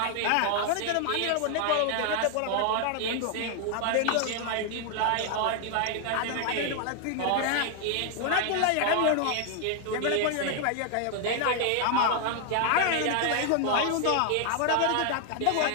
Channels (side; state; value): both; different; correlation 0.00